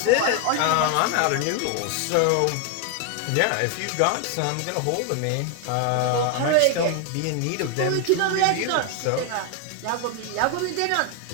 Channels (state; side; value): different; both; correlation 0.01